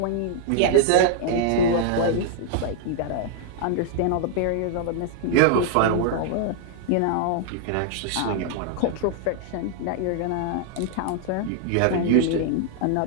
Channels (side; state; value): both; different; correlation -0.01